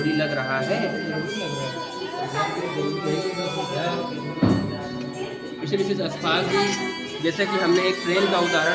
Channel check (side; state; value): both; identical; correlation 1.00